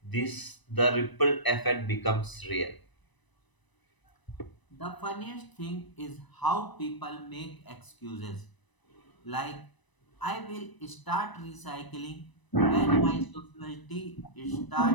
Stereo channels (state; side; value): late; right; 1.0 ms